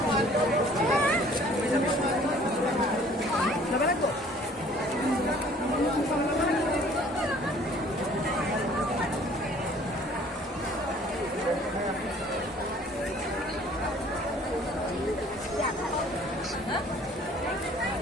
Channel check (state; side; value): normal; both; correlation 0.54